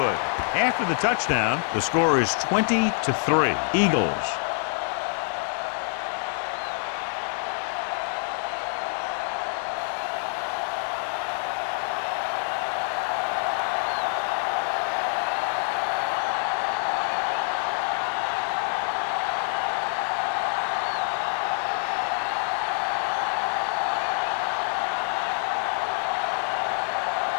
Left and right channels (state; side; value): silent; right; 61 dB below the other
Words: After the touchdown, the score is 20-3. Eagles.